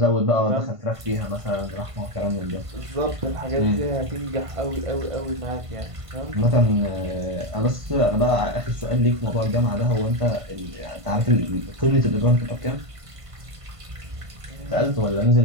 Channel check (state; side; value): late; left; 1.5 ms